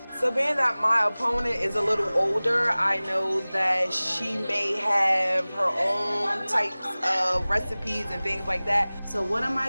So being that my opponent is a little older, I know that she may have her own types of recipes and things like that. So what am I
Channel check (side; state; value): both; inverted; correlation -0.99